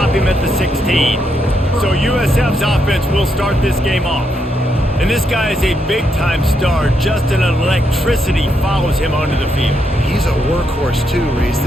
him at the 16. So USF's offense will start this game off. And this guy is a big-time star. Just an electricity follows him onto the field. He's a workhorse too, Reese.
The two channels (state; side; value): normal; both; correlation 0.79